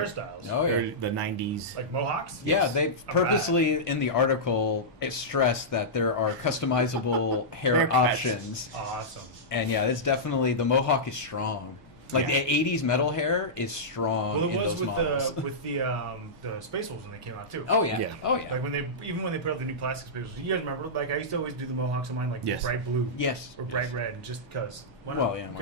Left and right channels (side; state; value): both; normal; correlation -0.13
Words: Oh, yeah. the 90s. Like mohawks? Yeah, Yes. they I'm purposely in the article stressed that there are customizable hair Haircuts. options. bad. Awesome. And yeah, it's definitely, the mohawk is strong. Like Yeah. the 80s metal hair is strong Well, it in was those models. with the Space Wolves when they came out too. Oh yeah. Yeah. Oh yeah. Like when they put out the new plastic Space Wolves. You guys remember? Like I used to always do the mohawks on mine like Yes. bright blue Yes. or bright red, just because. Well, yeah,